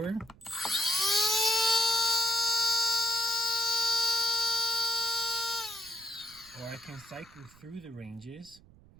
Or I can cycle through the ranges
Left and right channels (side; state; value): right; noise; rumble, 25 dB below the sound